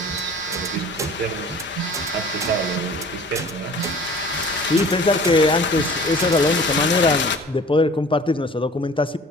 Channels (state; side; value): normal; both; correlation 0.47